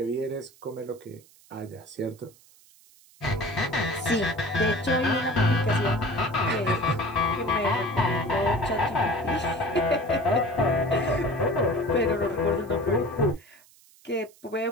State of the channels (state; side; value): noise; right; hiss, 27 dB below the sound